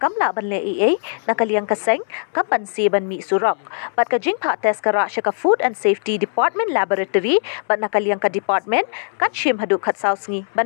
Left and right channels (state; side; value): silent; right; 66 dB below the other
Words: ban le EA, nakaliyang kaseng, kampansi ban mi surok. Bat kajing pa test ka ra siya ka Food and Safety Department Laboratory, bat nakaliyang ka department, katshim haduk kat sausngi